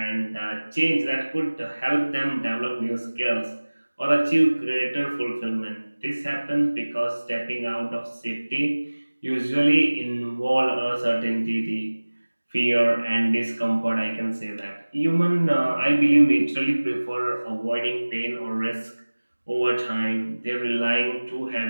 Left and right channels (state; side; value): inverted; both; correlation -1.00